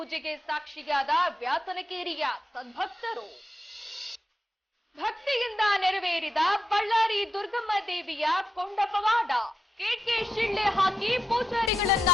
ಸಾಕ್ಷಿಯಾದ ವ್ಯಾಸನಕೇರಿಯ ಸದ್ಭಕ್ತರು. ಭಕ್ತಿಯಿಂದ ನೆರವೇರಿದ ಬಳ್ಳಾರಿ ದುರ್ಗಮ್ಮ ದೇವಿಯ ಕೊಂಡ ಪವಾಡ. ಕೇಟ್ಗೆ ಶಿಳ್ಳೆ ಹಾಕಿ ಪೂಜಾರಿಗಳನ್ನ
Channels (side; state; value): both; normal; correlation 0.87